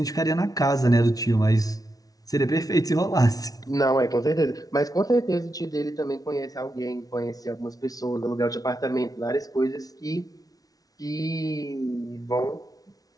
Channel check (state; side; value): late; right; 0.18 ms